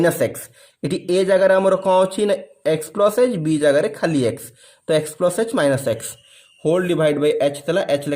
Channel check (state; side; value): identical; both; correlation 1.00